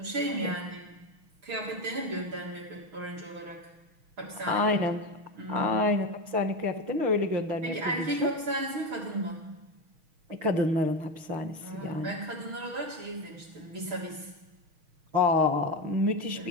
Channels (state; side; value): late; left; 6.3 ms